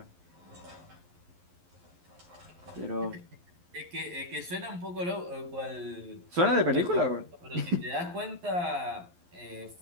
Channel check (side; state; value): left; late; 11 ms